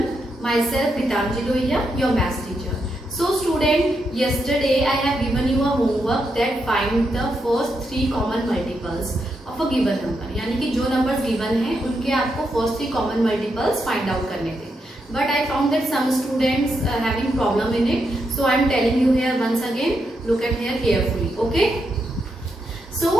myself Gitanjali Lohia, your maths teacher. So student, yesterday I have given you a homework that find the first three common multiples of a given number. यानी कि जो numbers given हैं उनके आपको first three common multiples find out करने थे. But I found that some students having problem in it, so I am telling you here once again. Look at here carefully, okay? So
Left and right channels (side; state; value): both; normal; correlation 0.82